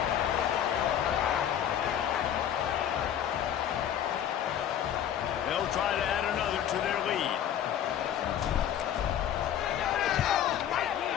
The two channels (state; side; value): quieter; right; 10.0 dB